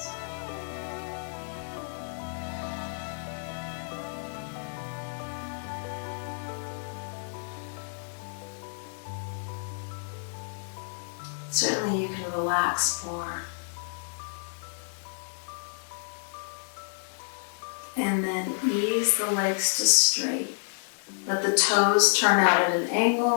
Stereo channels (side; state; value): right; silent; digital silence